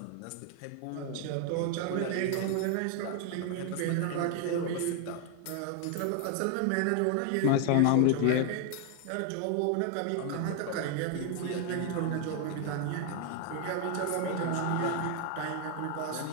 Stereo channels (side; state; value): both; different; correlation 0.00